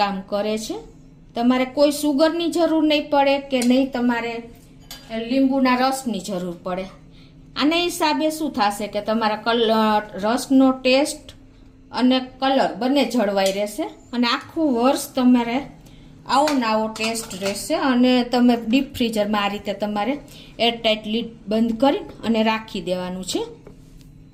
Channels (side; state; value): both; identical; correlation 1.00